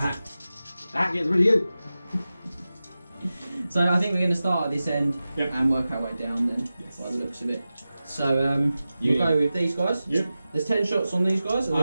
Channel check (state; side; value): inverted; both; correlation -0.94